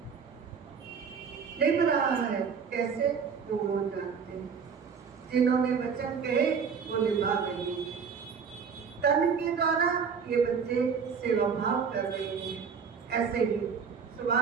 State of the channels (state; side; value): quieter; left; 6.2 dB